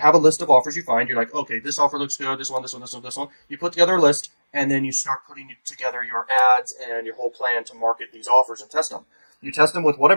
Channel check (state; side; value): inverted; both; correlation -1.00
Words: a list of offers you find. You're like, okay, this offer looks good. This one, this one, this one, this one. You put together a list, and then you start putting together your ads and your whole plan to market these offers and test them. You test them with